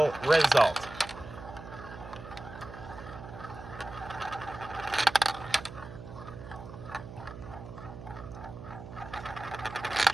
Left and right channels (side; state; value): right; noise; hum, 13 dB below the sound